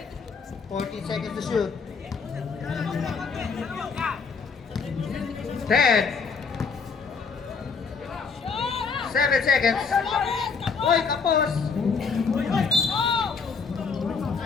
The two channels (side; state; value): right; quieter; 5.3 dB